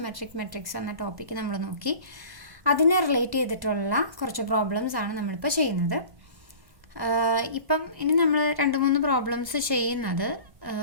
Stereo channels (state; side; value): late; left; 1.0 ms